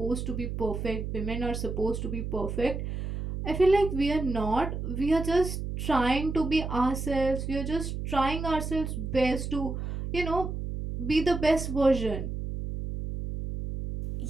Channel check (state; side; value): noise; right; hum, 5 dB below the sound